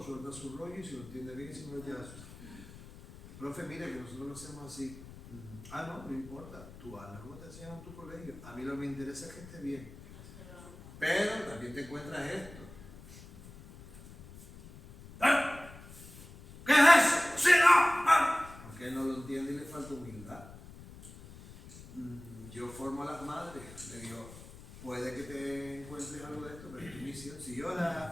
suelta su rollo y si lo entiende bien y si no lo lleva a su. Profe, mira que nosotros lo hacemos así. No importa, tú hazlo como te enseñan en tu colegio. A mí lo que me interesa es que esté bien. Pero también te encuentras esto. ¿Qué es eso? ¡Sí, no! Porque él no lo entiende y le falta humildad. Yo formo a las madres, le digo, puede que te encuentres algo de esto, pero es tu misión. Si yo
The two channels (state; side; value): noise; left; rumble, 17 dB below the sound